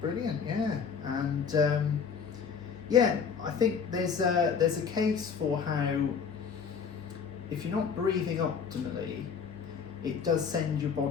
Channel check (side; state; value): right; quieter; 6.4 dB